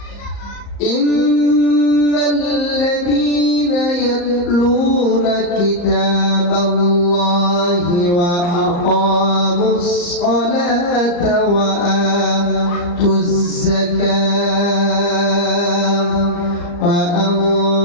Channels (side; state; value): right; late; 34 ms